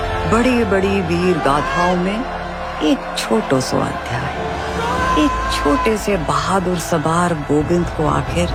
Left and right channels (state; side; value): identical; both; correlation 1.00